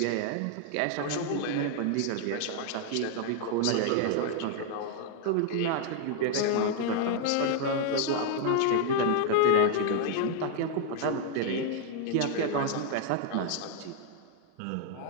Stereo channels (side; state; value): both; different; correlation 0.00